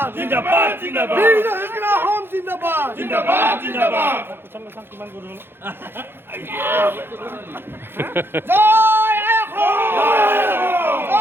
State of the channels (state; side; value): late; left; 0.10 ms